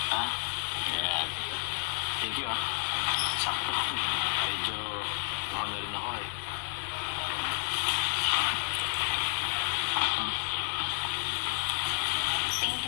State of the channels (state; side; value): silent; right; digital silence